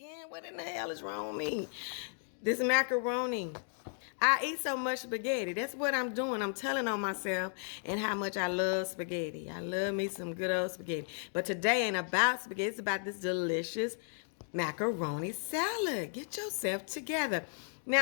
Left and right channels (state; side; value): silent; right; 55 dB below the other